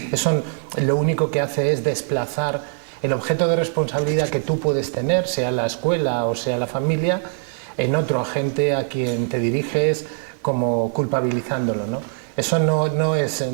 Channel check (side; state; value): left; silent; 64 dB below the other